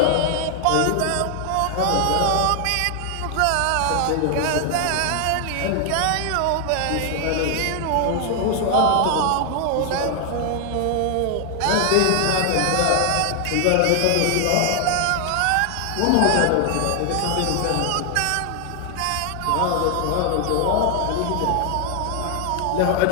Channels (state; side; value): different; both; correlation 0.00